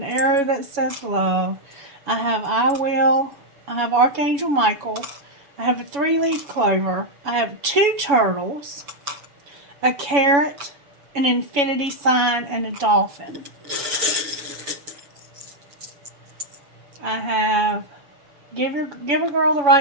arrow that says love. I have I will. I have Archangel Michael. I have a 3-leaf clover. I have 2 turtles, a carrot, an infinity sign, and a dolphin. I have Give a girl the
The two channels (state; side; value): late; left; 7.1 ms